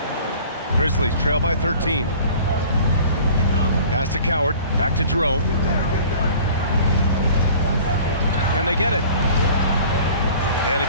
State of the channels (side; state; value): both; inverted; correlation -0.46